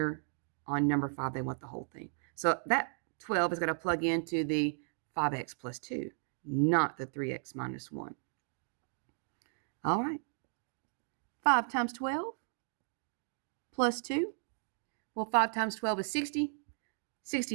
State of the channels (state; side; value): silent; left; digital silence